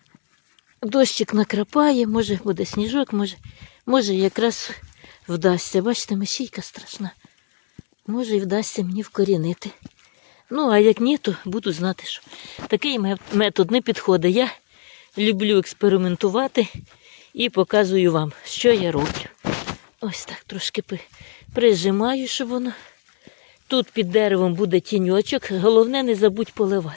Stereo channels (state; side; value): silent; right; digital silence